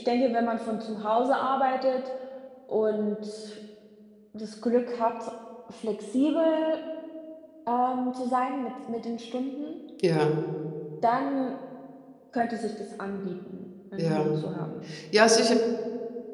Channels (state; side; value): identical; both; correlation 1.00